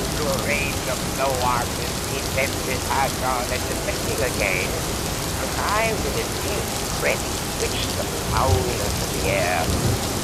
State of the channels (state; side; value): identical; both; correlation 1.00